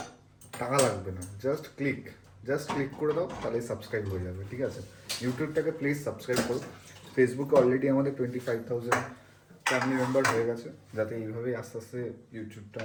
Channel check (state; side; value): identical; both; correlation 1.00